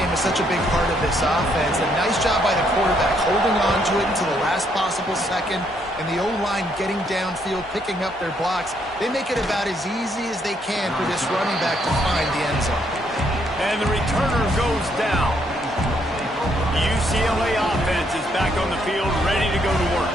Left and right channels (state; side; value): normal; both; correlation 0.72